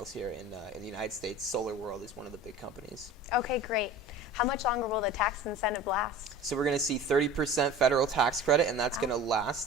here in the United States. Solar World is one of the big companies. Okay, great. How much longer will the tax incentive last? So we're going to see 30% federal tax credit, and that's going to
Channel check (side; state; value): both; normal; correlation 0.39